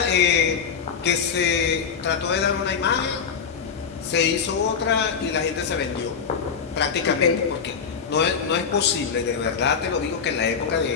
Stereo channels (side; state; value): right; quieter; 6.5 dB